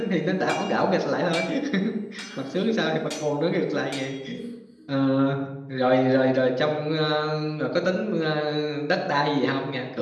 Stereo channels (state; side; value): identical; both; correlation 1.00